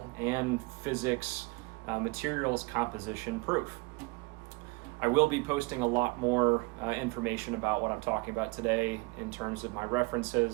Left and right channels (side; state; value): left; quieter; 26.1 dB